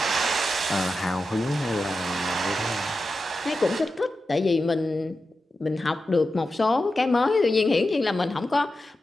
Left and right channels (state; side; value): normal; both; correlation 0.91